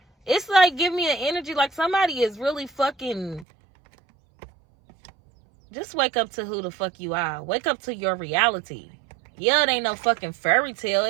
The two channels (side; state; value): left; drops out; at 3.5 s